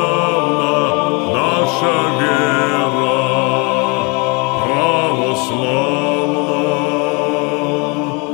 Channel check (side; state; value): right; quieter; 30.5 dB